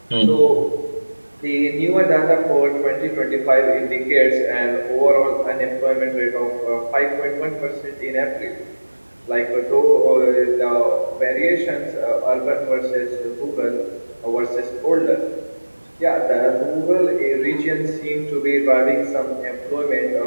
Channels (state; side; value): inverted; both; correlation -1.00